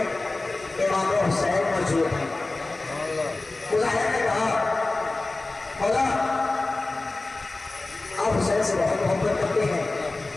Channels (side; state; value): right; quieter; 3.2 dB